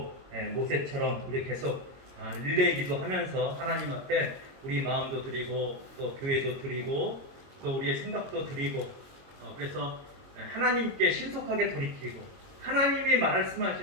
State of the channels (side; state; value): left; late; 22 ms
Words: 모세처럼 우리 계속 릴레이 기도하면서 하나님 앞에 우리 마음도 드리고 또 교회도 드리고 또 우리의 생각도 드리고 그래서 하나님께 신속하게 돌이키고 하나님이